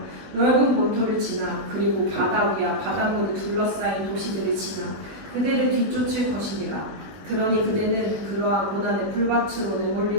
넓은 본토를 지나 그리고 바다 위와 바닷물을 둘러싸인 도시들을 지나 그대를 뒤쫓을 것이니라. 그러니 그대는 그러한 고난의 풀밭으로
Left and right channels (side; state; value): left; late; 20 ms